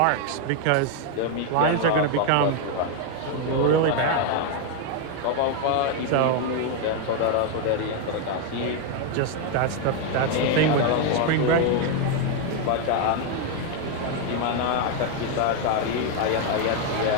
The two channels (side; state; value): both; different; correlation 0.01